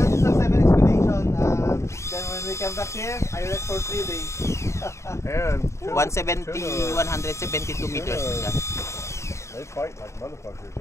a 7 expedition. Then when we come back here, I rest for 3 days. And 172 meters na siya. they fight like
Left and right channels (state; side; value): late; right; 0.14 ms